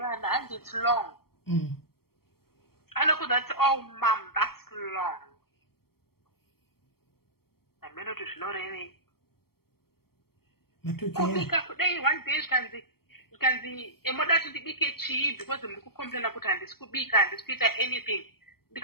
and it's long anokuza kuti oh mam that's long amenoti zvinorevei kubika kudai one day zvikanzi emoda kuti ndibike chii because muri kucomplaina kuti handisi kubika handisi kuita anything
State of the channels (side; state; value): right; late; 0.94 ms